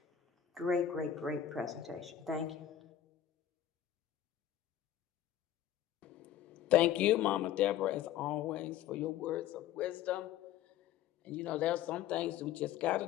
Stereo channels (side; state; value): right; quieter; 11.0 dB